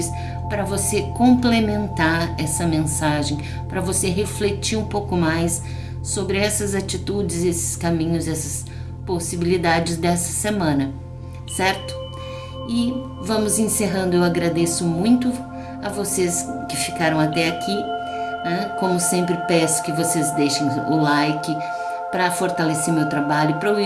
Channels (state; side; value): identical; both; correlation 1.00